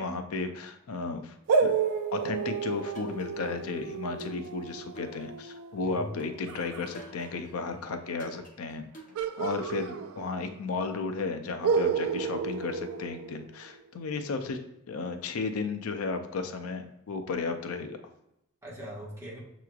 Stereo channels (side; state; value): both; normal; correlation -0.12